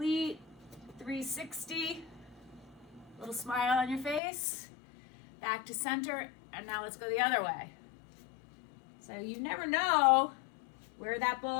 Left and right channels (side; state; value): right; drops out; at 4.2 s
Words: 360, little smile on your face, back to center, and now let's go the other way. So you never know where that